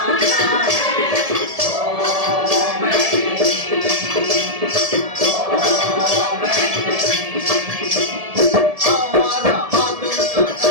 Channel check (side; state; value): left; late; 1.7 ms